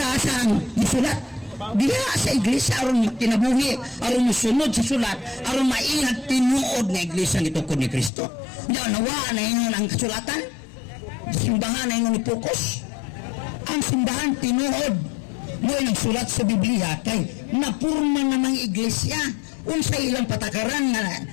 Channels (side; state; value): right; drops out; at 8.1 s